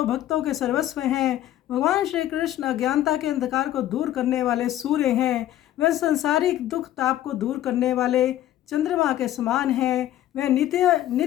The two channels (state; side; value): quieter; right; 12.9 dB